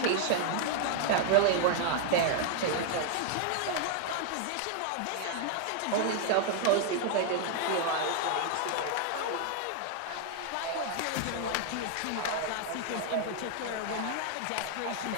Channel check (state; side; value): different; both; correlation 0.00